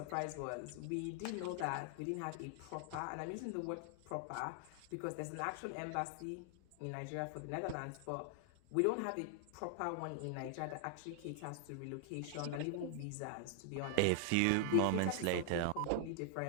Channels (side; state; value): both; different; correlation 0.00